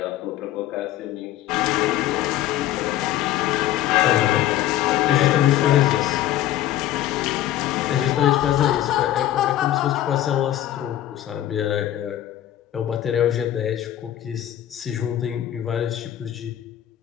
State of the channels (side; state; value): right; quieter; 12.7 dB